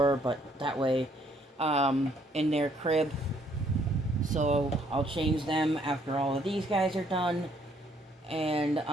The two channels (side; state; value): both; normal; correlation 0.66